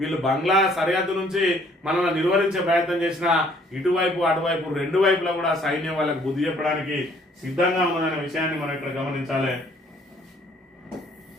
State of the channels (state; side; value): normal; both; correlation 0.61